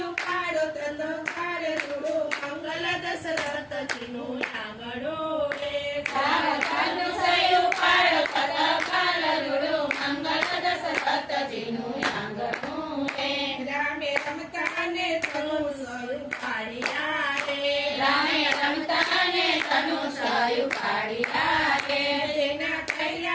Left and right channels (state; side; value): identical; both; correlation 1.00